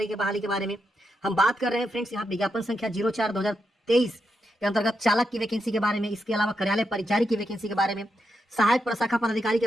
की बहाली के बारे में, हम बात कर रहे हैं फ्रेंड्स यहाँ विज्ञापन संख्या 04/2023 के अंतर्गत चालक की वैकेंसी के बारे में, इसके अलावा कार्यालय परिचारी की वैकेंसी के बारे में, सहायक प्रशाखा पदाधिकारी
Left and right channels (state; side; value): normal; both; correlation 0.84